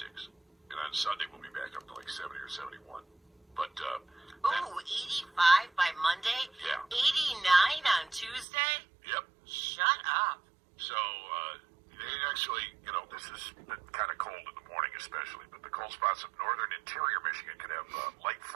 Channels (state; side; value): drops out; left; at 8.5 s